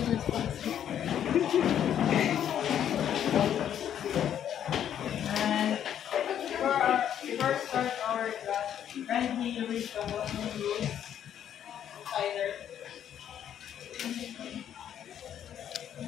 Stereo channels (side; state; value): right; quieter; 9.8 dB